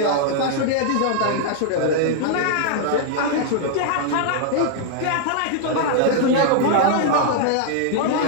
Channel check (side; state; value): both; different; correlation -0.01